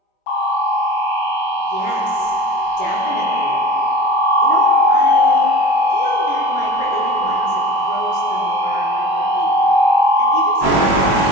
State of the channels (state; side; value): late; right; 21 ms